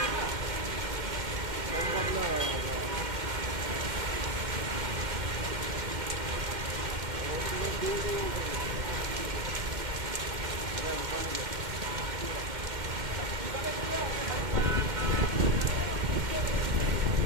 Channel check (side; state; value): left; late; 2.1 ms